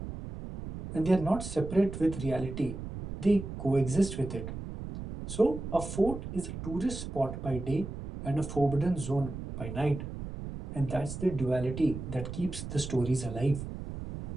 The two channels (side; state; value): right; noise; rumble, 8 dB below the sound